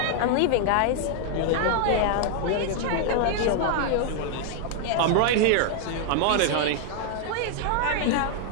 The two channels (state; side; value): different; both; correlation 0.00